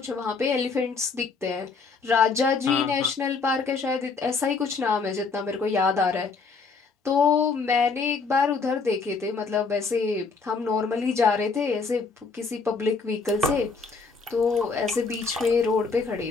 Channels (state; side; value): quieter; right; 4.6 dB